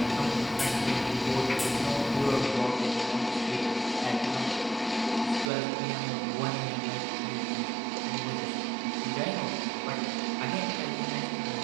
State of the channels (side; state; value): left; drops out; at 5.5 s